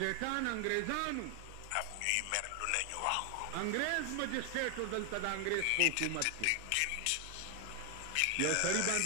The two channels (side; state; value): both; different; correlation 0.00